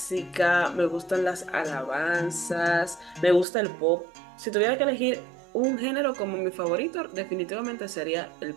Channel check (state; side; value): drops out; left; at 3.5 s